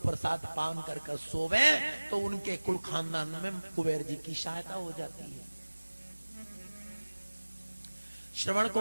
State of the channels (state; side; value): inverted; both; correlation -1.00